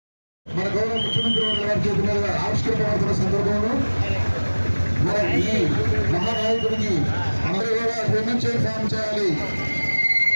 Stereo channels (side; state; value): both; inverted; correlation -1.00